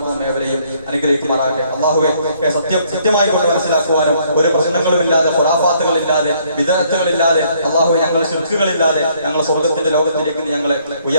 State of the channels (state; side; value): inverted; both; correlation -0.66